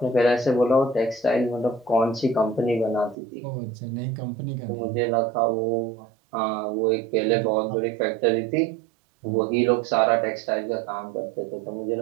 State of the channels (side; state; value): left; drops out; at 3.2 s